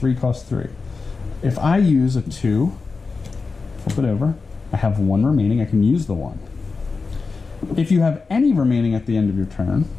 cost 3. If I use a 2, flip it over, I have 1 remaining, I can use the 1. If you have any remaining at the end of your turn,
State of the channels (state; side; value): quieter; right; 4.4 dB